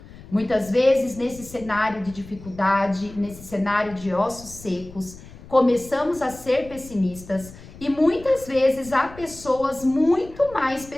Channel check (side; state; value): left; noise; rumble, 18 dB below the sound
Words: Muitas vezes, nesse cenário de dificuldade, nesse cenário de ossos secos, começamos a ser pessimistas e muitas vezes há pessoas muito mais